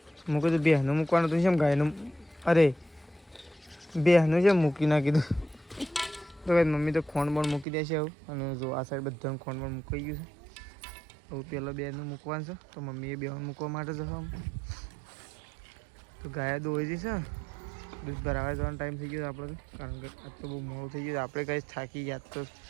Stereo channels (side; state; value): left; drops out; at 7.7 s